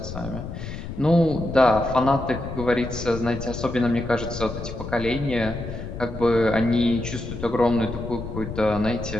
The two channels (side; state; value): left; noise; rumble, 8 dB below the sound